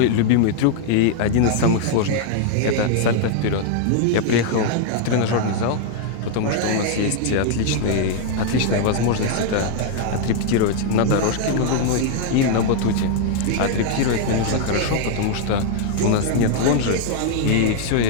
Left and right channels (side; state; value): both; different; correlation 0.00